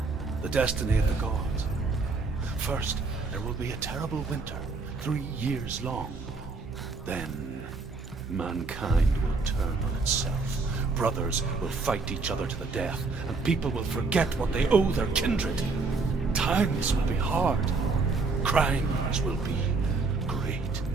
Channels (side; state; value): left; quieter; 4.0 dB